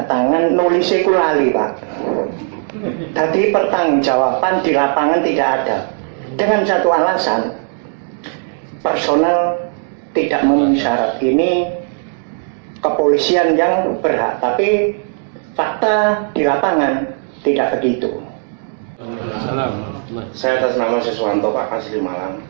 tangan, nulisnya ku lali Pak. Tadi pertanggungjawaban di lapangan tidak ada. Dengan satu alasan, personal tidak memenuhi syarat. Ini kepolisian yang berhak, tapi fakta di lapangan tidak begitu. Saya atas nama Siswanto Pak, asli Malang.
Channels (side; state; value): left; silent; 67 dB below the other